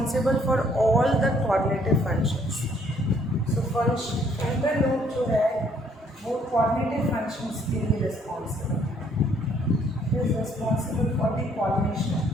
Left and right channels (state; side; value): normal; both; correlation 0.65